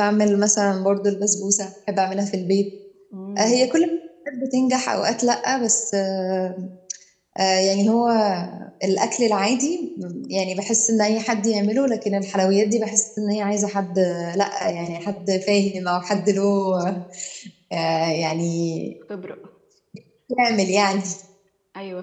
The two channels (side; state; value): both; identical; correlation 1.00